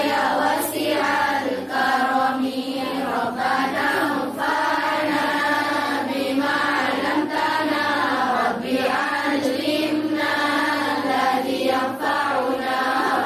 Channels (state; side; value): identical; both; correlation 1.00